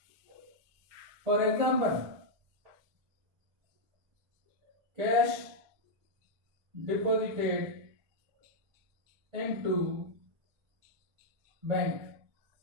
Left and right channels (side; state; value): left; late; 1.6 ms